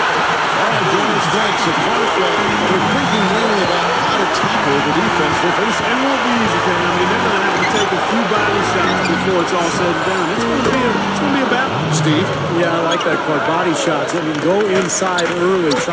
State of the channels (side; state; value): both; identical; correlation 1.00